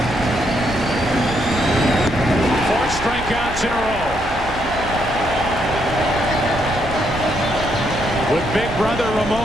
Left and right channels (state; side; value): noise; right; hum, 12 dB below the sound